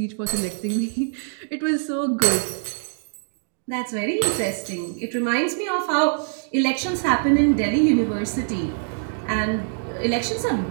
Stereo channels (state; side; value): silent; left; digital silence